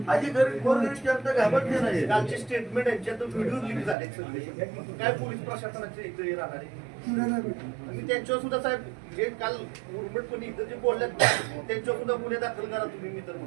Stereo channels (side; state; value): left; drops out; at 4.0 s